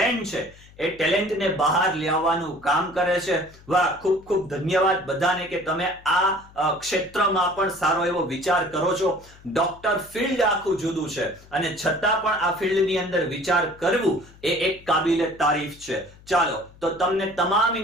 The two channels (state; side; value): noise; left; hum, 24 dB below the sound